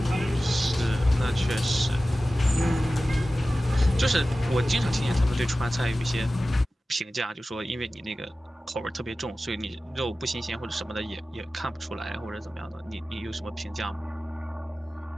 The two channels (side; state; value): both; normal; correlation 0.95